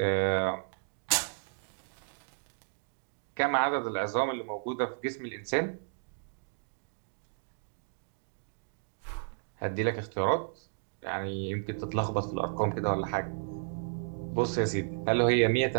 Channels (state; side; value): silent; left; digital silence